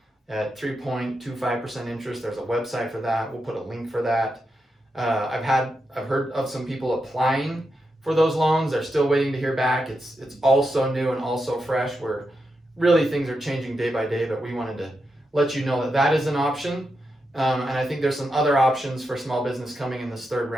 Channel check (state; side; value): normal; both; correlation 0.86